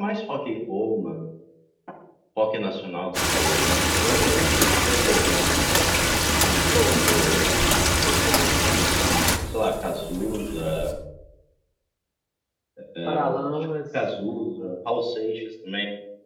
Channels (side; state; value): both; identical; correlation 1.00